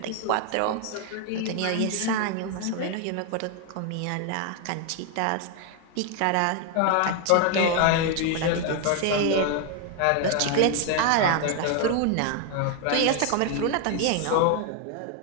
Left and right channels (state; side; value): different; both; correlation 0.01